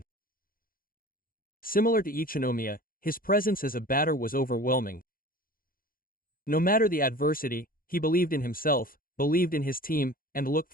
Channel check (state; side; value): late; right; 0.41 ms